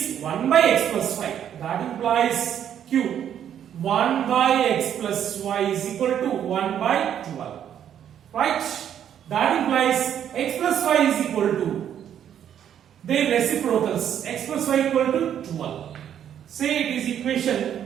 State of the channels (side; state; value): left; quieter; 9.6 dB